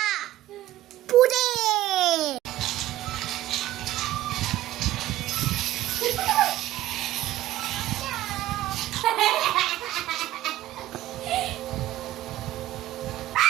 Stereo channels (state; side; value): quieter; left; 14.7 dB